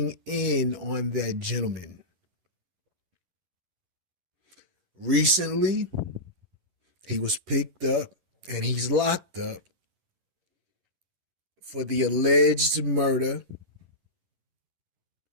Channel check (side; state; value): left; late; 11 ms